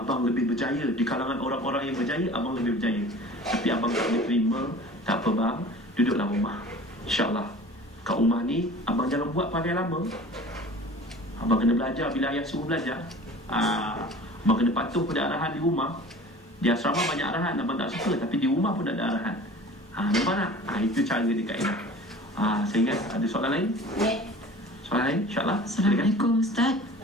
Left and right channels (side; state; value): both; normal; correlation 0.42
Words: lebih berjaya. Di kalangan orang-orang yang berjaya, abang lebih berjaya. Tapi abang tak boleh terima. Tak apa bang, duduklah rumah. InsyaAllah kat rumah ni abang jangan buat pakai lama. Abang kena belajar bila ayah suruh belajar. Abang kena patuh pada arahan di rumah. Di asrama banyak arahan, abang tak suka, tapi di rumah pun ada arahan. Nampak tak? Itu cara dia kaedah. Saya ingat ada soalan lain? Soalan lain? InsyaAllah. Assalamualaikum Ustaz.